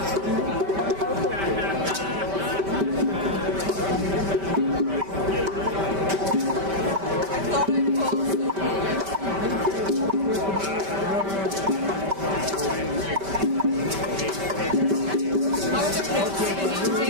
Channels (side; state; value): left; late; 5.1 ms